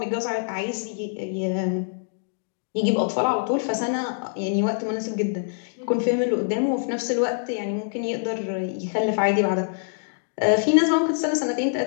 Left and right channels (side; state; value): right; silent; digital silence